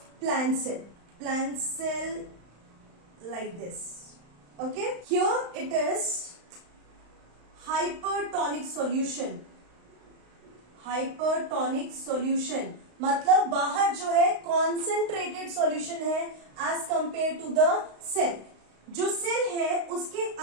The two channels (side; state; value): left; late; 35 ms